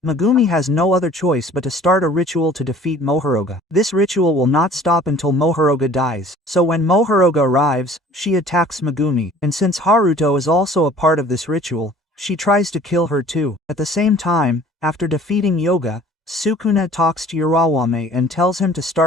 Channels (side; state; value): both; normal; correlation 0.50